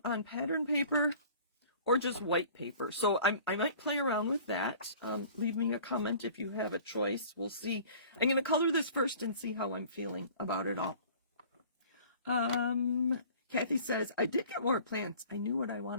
on pattern paper or just white paper. So I might play around with that. Leave me a comment if you have a choice. We'll see. I'm going to color this first and see how I'm feeling about it all. Kathy says, I did get more plants. I knew what I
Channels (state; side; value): inverted; both; correlation -0.48